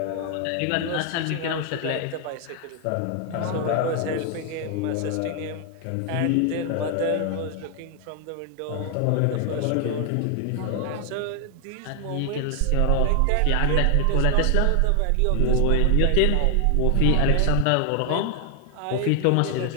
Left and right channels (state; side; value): different; both; correlation 0.00